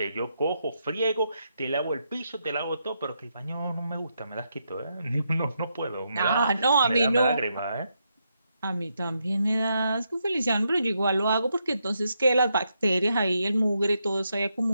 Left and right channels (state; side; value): inverted; both; correlation -0.81